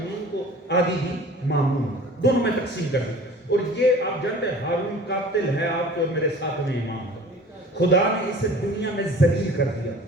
کو، آدھی دی مامون، دونوں میں تقسیم کر دی. اور یہ آپ جانتے ہیں ہارون قاتل ہے آپ کے اور میرے ساتھ میں امام کا. خدا نے اسے دنیا میں ذلیل کر دیا.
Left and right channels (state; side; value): normal; both; correlation 0.44